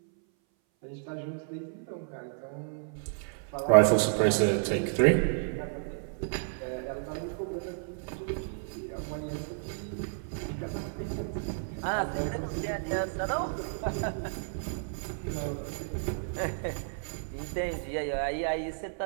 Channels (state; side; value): silent; left; 57 dB below the other